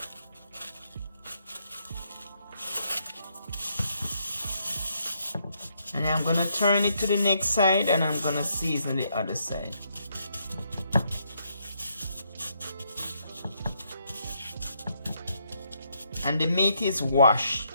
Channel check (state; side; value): inverted; both; correlation -0.75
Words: And I'm gonna turn it to the next side, and I'm gonna season the other side. And the meat is washed.